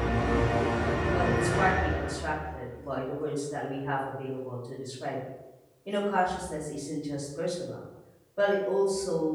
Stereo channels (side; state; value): both; identical; correlation 1.00